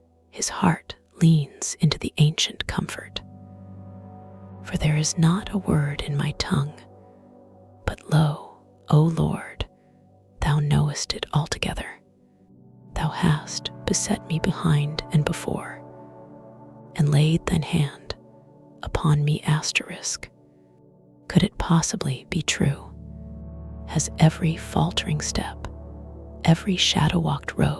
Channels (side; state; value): both; identical; correlation 1.00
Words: his heart leans into the ancient comfort. For there is not a word in my tongue, but lo, O Lord, thou knowest it altogether. Thou hast beset me behind and before, and laid thine hand upon me asterisk. Could it possibly be true? Has every faltering step, every shadow-walked